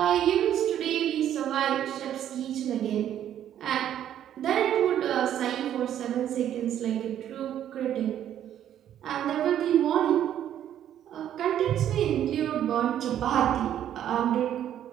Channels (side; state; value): left; quieter; 10.7 dB